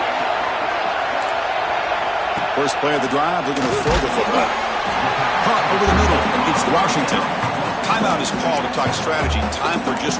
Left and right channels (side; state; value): both; identical; correlation 1.00